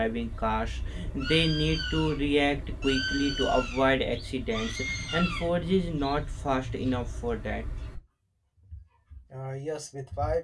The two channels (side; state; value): both; identical; correlation 1.00